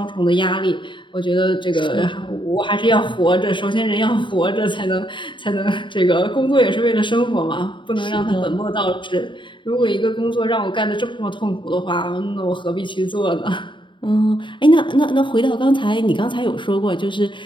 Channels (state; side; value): late; right; 0.23 ms